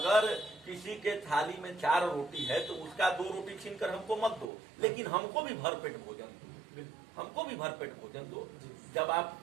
किसी के थाली में 4 रोटी है तो उसका 2 रोटी छीन कर हमको मत दो, लेकिन हमको भी भरपेट भोजन दो, हमको भी भरपेट भोजन दो। जब आप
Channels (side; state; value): left; drops out; at 4.5 s